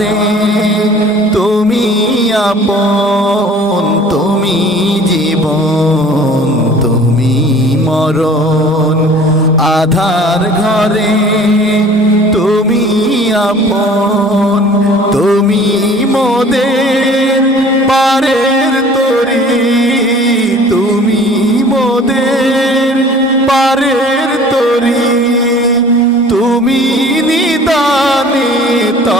তুমি আপন তুমি জীবন তুমি মরণ আধার ঘরে তুমি আপন তুমি মোদের পারের তরি তুমি মোদের পারের তরি তুমি নিদানে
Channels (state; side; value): normal; both; correlation 0.48